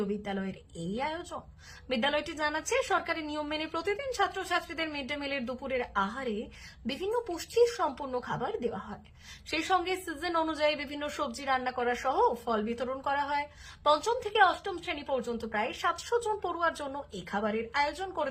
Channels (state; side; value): identical; both; correlation 1.00